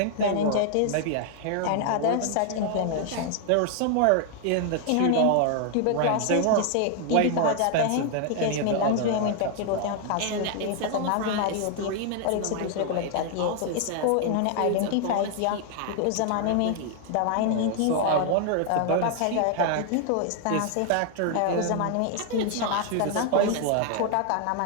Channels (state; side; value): different; both; correlation 0.00